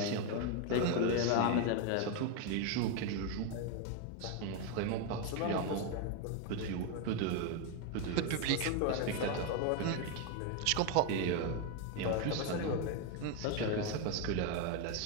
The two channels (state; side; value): different; both; correlation 0.01